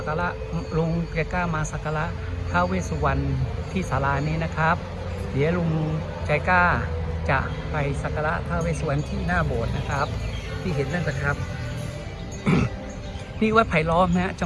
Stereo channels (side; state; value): both; identical; correlation 1.00